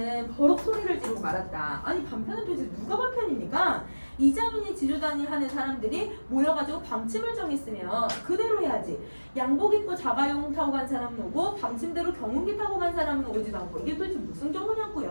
버럭 소리를 지르고 말았다. 아니 반편은 도대체 누가 반편입니까? 이자민이 지주단위 하는 사람들이 모여가지고 방침을 정했으면 그대로 해야지. 양복 입고 자가용 타고 간 사람은 오고 방침대로 경운기 타고 간 사람은 오지도 않고 이게 도대체 무슨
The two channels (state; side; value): inverted; both; correlation -1.00